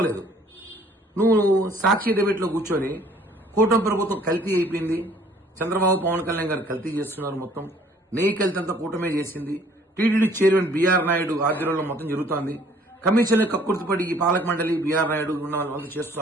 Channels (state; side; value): normal; both; correlation 0.58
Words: నువ్వు సాక్షి డిబేట్లో కూర్చొని కూటమి ప్రభుత్వం కల్తీ అయిపోయింది, చంద్రబాబు పవన్ కళ్యాణ్ గారు కల్తీ చేస్తున్నారు, మొత్తం నెయ్యి కల్తీ అంతా కూటమే చేసింది, టీటీడీ చైర్మన్ బీఆర్ నాయుడు ఆధ్వర్యంలో మొత్తం జరుగుతోంది, కమిషన్లు కక్కుర్తిపడి ఈ పాలక మండలి బీఆర్ నాయుడు ఉన్న వాళ్ళంతా